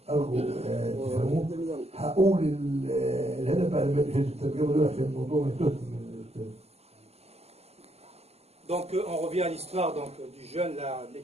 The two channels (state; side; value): late; left; 0.30 ms